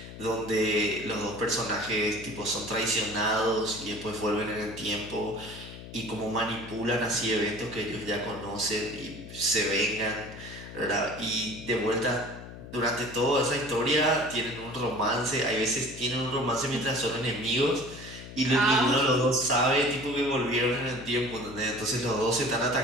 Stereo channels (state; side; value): noise; left; hum, 13 dB below the sound